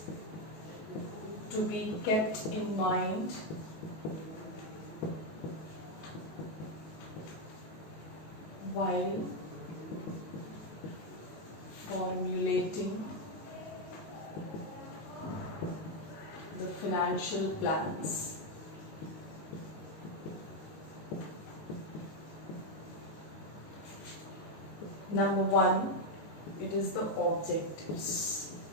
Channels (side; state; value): right; late; 19 ms